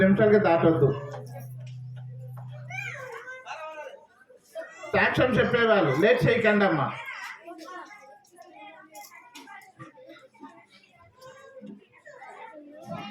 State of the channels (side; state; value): both; identical; correlation 1.00